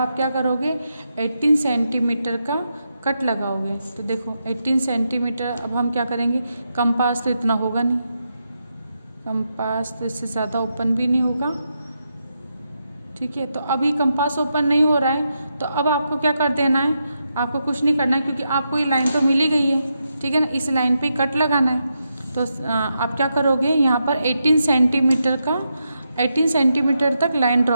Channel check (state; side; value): inverted; both; correlation -0.84